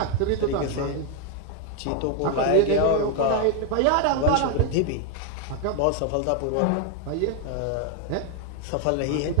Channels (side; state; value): both; different; correlation 0.01